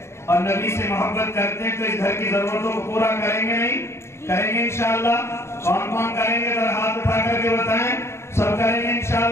اور نبی سے محبت کرتے ہیں تو اس گھر کی ضرورتوں کو پورا کریں گے نہیں؟ کریں گے انشاءاللہ۔ کون کون کریں گے ذرا ہاتھ اٹھا کر کے بتائیں۔ سب کریں گے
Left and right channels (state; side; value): late; right; 0.13 ms